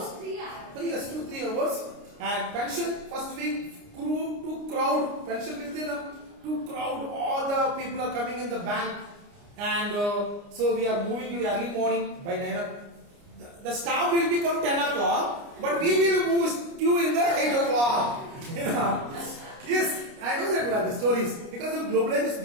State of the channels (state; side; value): late; left; 29 ms